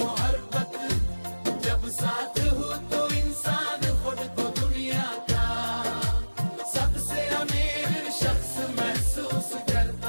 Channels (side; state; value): both; inverted; correlation -1.00